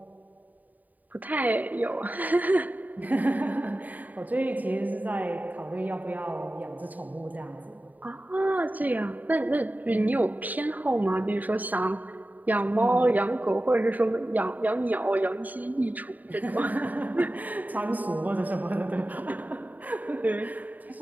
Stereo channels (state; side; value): late; left; 0.080 ms